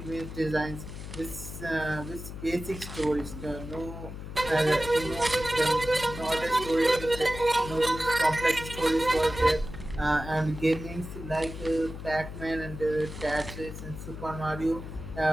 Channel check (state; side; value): noise; left; hum, 10 dB below the sound